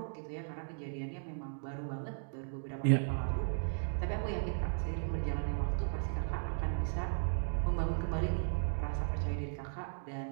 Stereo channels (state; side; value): silent; left; digital silence